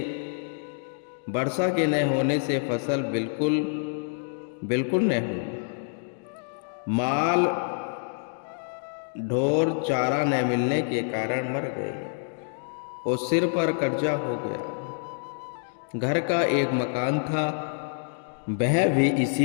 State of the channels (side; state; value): right; silent; digital silence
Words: होने से फसल बिल्कुल न हुई। माल ढोर चारा न मिलने के कारण मर गए और सिर पर कर्जा हो गया। घर का एक मकान था, वह भी